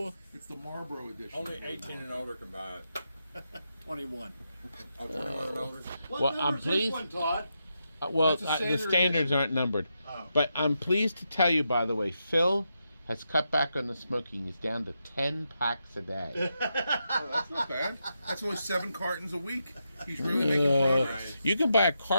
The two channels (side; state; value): both; inverted; correlation -0.85